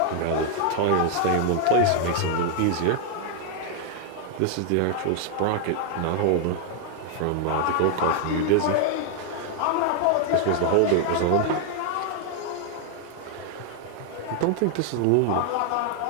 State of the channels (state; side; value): different; both; correlation 0.00